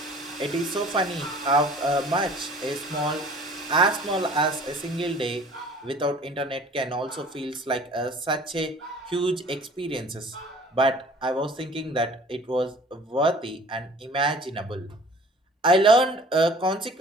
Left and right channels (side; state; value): both; normal; correlation 0.49